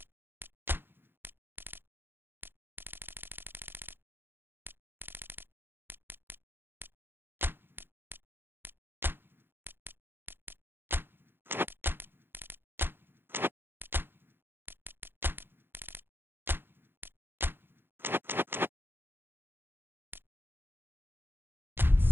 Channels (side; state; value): left; late; 0.10 ms